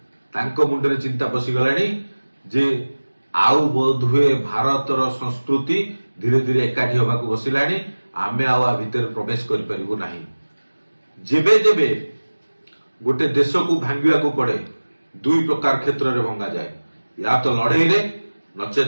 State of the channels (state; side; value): inverted; both; correlation -1.00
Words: तांको मुंडे चिंता पसिगलानी जे आउ बोध हुए भारत रो संस्कृति धीरे धीरे एकाठी होबाकू बसिलानी। आमे आउ भितर प्रवेश करि परिबो नाही। जेबे जेबे गोटे देश को भांगा पड़े दुई प्रकार क्षेत्र में भंगा जाए, या तो लड़ई रे